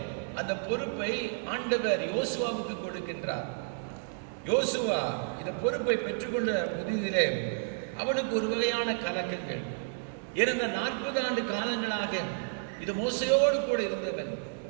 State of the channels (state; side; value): silent; left; digital silence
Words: அந்த பொறுப்பை ஆண்டவர் யோசுவாவுக்கு கொடுக்கின்றார். யோசுவா இந்த பொறுப்பை பெற்றுக்கொண்ட புதிதிலே அவனுக்கு ஒரு வகையான கலக்கங்கள். இறந்த 40 ஆண்டு காலங்களாக இது மோசையோடு கூட இருந்தவன்.